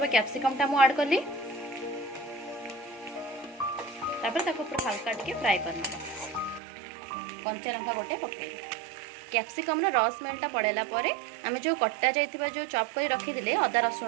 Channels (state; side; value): drops out; left; at 6.6 s